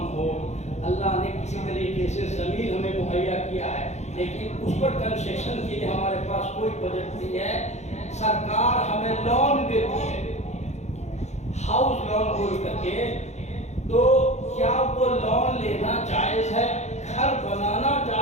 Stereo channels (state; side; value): late; right; 0.33 ms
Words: ہو. اللہ نے کسی طریقے سے زمین ہمیں مہیا کیا ہے لیکن اس پر کنسیشن کے لیے ہمارے پاس کوئی بجٹ نہیں ہے. سرکار ہمیں لون دیتی ہے, ہاؤس لون بول کر کے, تو کیا وہ لون لینا جائز ہے, گھر بنانا